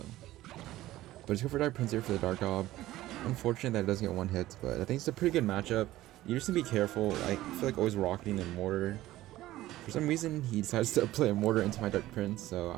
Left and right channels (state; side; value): quieter; left; 15.8 dB